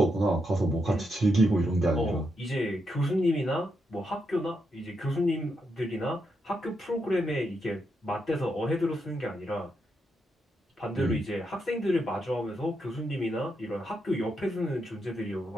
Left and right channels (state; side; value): normal; both; correlation 0.82